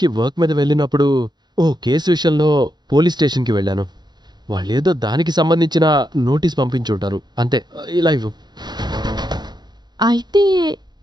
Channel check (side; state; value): left; late; 0.21 ms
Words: వర్క్ మీద వెళ్ళినప్పుడు ఓ కేసు విషయంలో పోలీస్ స్టేషన్‌కి వెళ్ళాను. వాళ్ళేదో దానికి సంబంధించిన నోటీస్ పంపించుంటారు. అంతే. ఇలా ఇవ్వు. అయితే